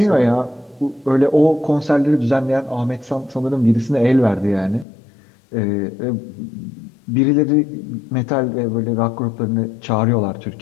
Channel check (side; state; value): right; drops out; at 4.9 s